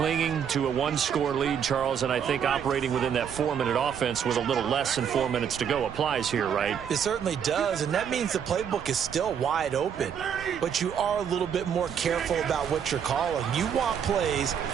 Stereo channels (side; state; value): left; quieter; 8.0 dB